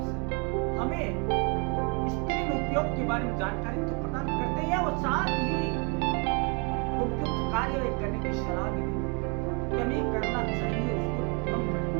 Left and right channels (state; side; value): quieter; left; 35.4 dB